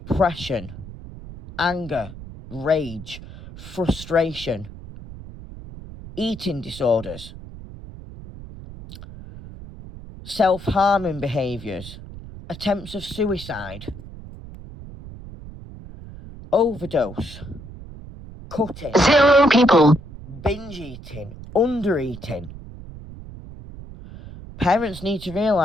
anger, rage, frustration, eating disorders, self-harming behaviours, attempts of suicide, overdose, cutting, 0 people, binge eating, under eating. Parents need to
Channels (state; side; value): noise; right; rumble, 14 dB below the sound